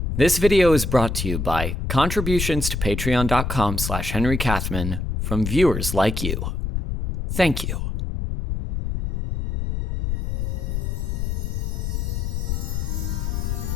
This video is brought to you by contributions to patreon.com/Henry Kathman from viewers like you. Thank you.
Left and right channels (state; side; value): noise; left; rumble, 2 dB below the sound